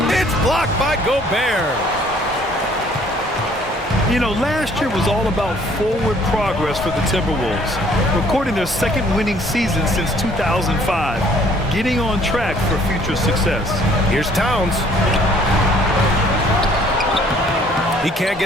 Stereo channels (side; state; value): both; normal; correlation 0.59